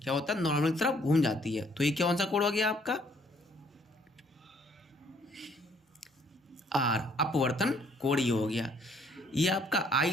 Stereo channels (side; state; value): both; normal; correlation 0.63